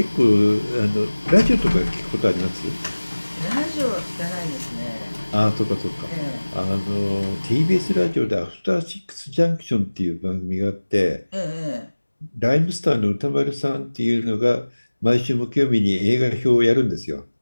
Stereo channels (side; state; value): both; inverted; correlation -1.00